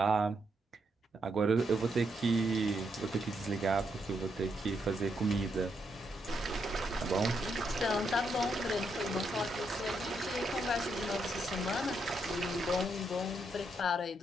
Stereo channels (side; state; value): both; normal; correlation 0.79